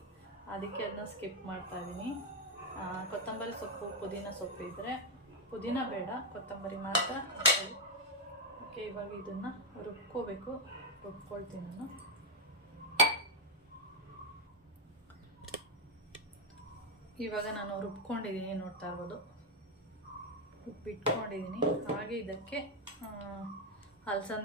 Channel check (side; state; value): both; normal; correlation 0.03